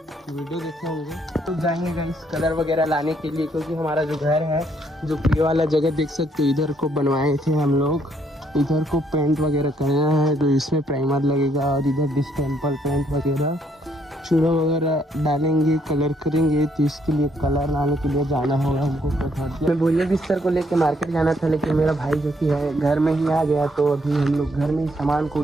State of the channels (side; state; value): both; normal; correlation 0.70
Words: वीडियो देखे होंगे। तो जाएंगे गाइस कलर वगैरह लाने के लिए, क्योंकि हमारा जो घर है, जो ये वाला जगह देख सकते हो, इधर को बनवाए थे हम लोग, इधर को पेंट वगैरह करना है, तो इसमें प्राइमर लगेगा, और इधर डिस्टेंपल पेंट वगैरह चूड़ा वगैरह डालेंगे, कलर करेंगे, तो इसके लिए कलर लाने के लिए जाना होगा हमको। मैं बोरिया बिस्तर को लेके मार्केट जाना था, लेकिन मेरा भाई जो कि है घर में ही आ गया, तो अभी हम लोग घर में ही सामान को